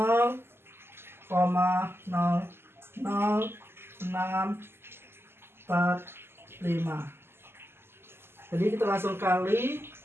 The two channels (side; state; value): left; late; 0.12 ms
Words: Jadi kita langsung kali